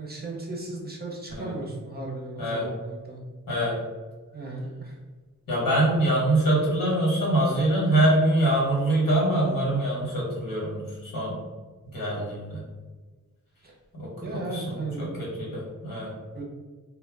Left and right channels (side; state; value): both; normal; correlation 0.43